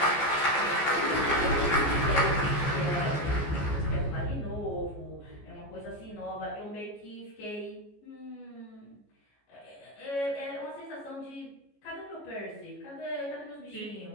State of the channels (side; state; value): right; late; 14 ms